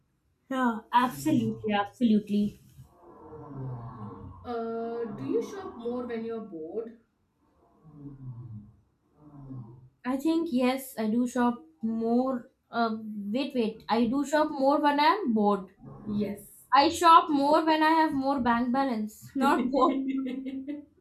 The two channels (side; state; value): both; identical; correlation 1.00